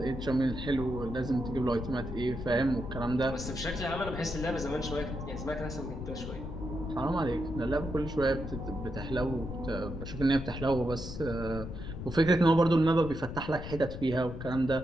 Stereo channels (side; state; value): left; noise; rumble, 8 dB below the sound